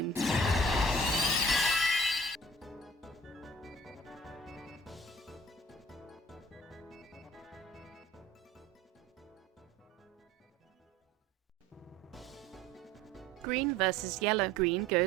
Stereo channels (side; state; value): both; normal; correlation 0.50